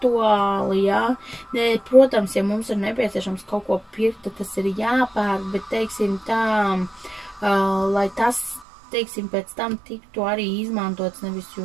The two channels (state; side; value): drops out; left; at 8.7 s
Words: jā. Protams, ja mums ir nepieciešams kaut ko pirkt, tad tas ir jāpērk, bet, teiksim tā, lai tas, teiksim, pēc tam tiktu arī izmantots, nevis